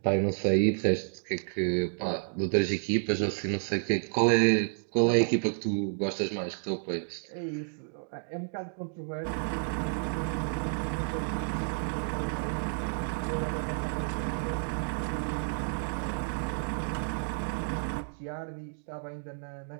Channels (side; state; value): left; silent; digital silence